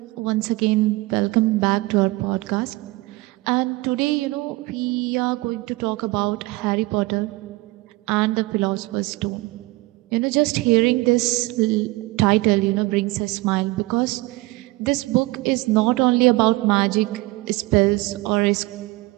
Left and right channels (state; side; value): quieter; left; 21.1 dB